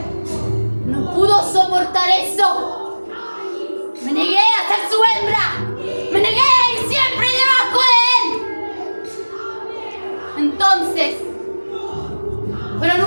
no pudo soportar eso. Me negué a ser su hembra. Me negué a ir siempre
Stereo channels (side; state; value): both; inverted; correlation -1.00